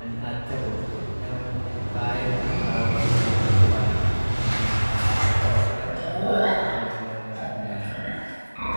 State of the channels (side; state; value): both; inverted; correlation -1.00